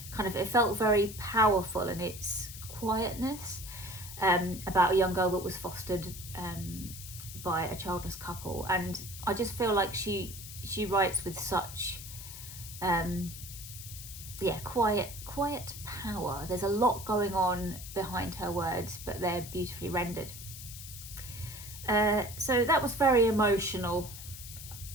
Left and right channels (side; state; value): left; noise; hiss, 12 dB below the sound